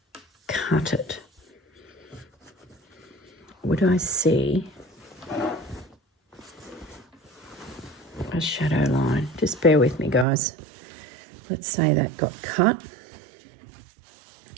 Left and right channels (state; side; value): drops out; left; at 10.2 s